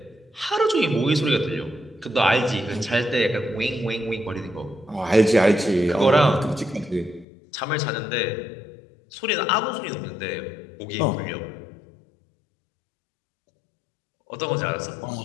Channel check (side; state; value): right; drops out; at 7.2 s